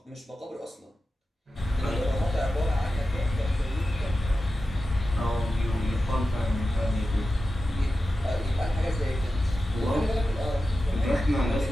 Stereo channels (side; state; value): both; normal; correlation 0.93